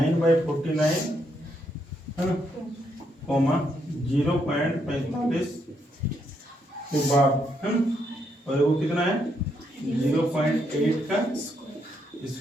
है ना, कॉमा 0.45 के बाद है ना, और वो कितना है 0.8 का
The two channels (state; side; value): normal; both; correlation 0.76